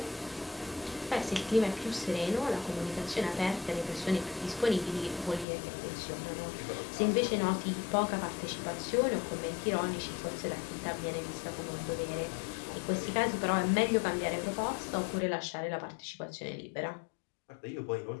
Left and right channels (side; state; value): right; drops out; at 5.5 s